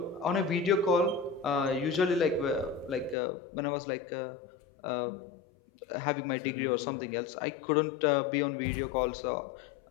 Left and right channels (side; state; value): right; drops out; at 3.2 s